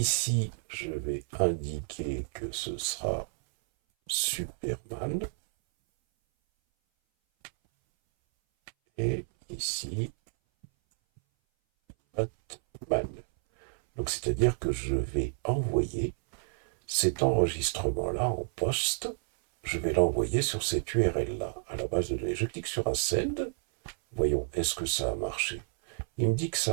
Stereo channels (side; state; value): left; silent; 58 dB below the other